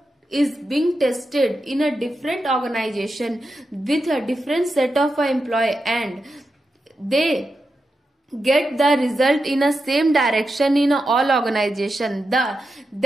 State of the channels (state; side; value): normal; both; correlation 0.88